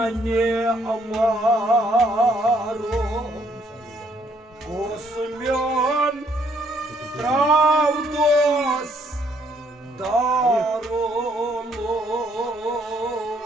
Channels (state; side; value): normal; both; correlation 0.68